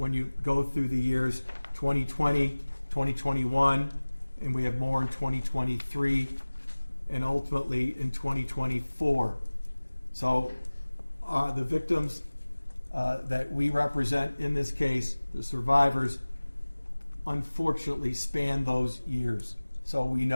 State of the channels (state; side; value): inverted; both; correlation -1.00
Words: you go through the years 2020, 2021, and we have more in 2023, and ultimately in 2024. So the victims that we represent in this case, the survivors, unfortunately span those years. So we